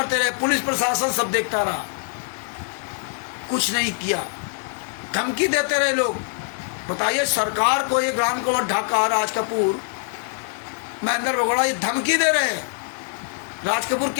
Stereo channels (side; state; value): right; silent; 63 dB below the other